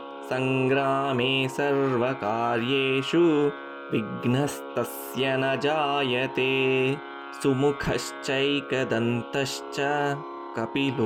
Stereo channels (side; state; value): both; identical; correlation 1.00